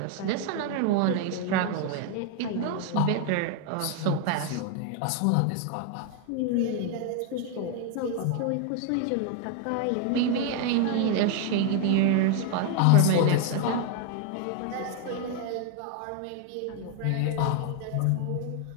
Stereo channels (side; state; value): both; different; correlation 0.01